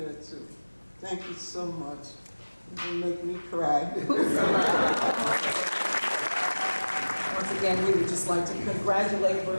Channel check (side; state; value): both; inverted; correlation -1.00